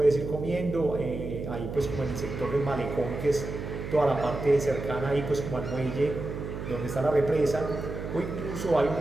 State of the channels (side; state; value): right; noise; hum, 7 dB below the sound